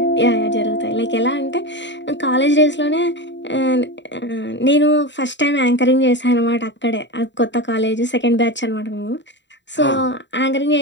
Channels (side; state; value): right; late; 0.52 ms